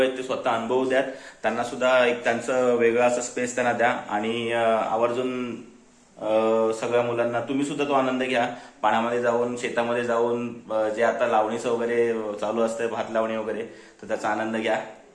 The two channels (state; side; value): identical; both; correlation 1.00